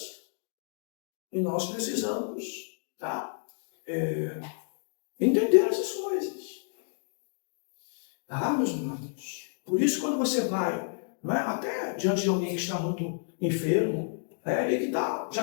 E nós precisamos, entender essas coisas. Meus irmãos? Por isso, quando você vai, até diante de alguém que está muito enfermo, e que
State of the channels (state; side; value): silent; right; digital silence